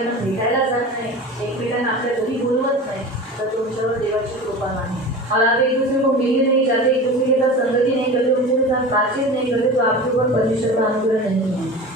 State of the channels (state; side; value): normal; both; correlation 0.33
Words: भेटायला जात नाही एकमेकांना आपल्या घरी बोलवत नाही तर तुमच्यावर देवाची कृपा नाही. और आप एक दूसरे को मिलने नहीं जाते, एक दूसरे के साथ संगति नहीं करते, उनके साथ बातचीत नहीं करते तो आपके ऊपर परमेश्वर का अनुग्रह नहीं है.